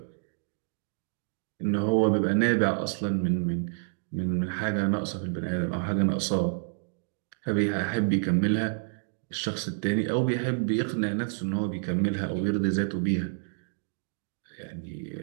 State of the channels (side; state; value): left; silent; digital silence